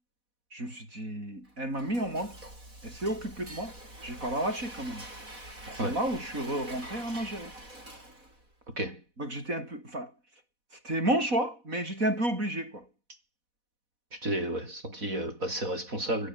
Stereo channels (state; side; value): late; left; 4.1 ms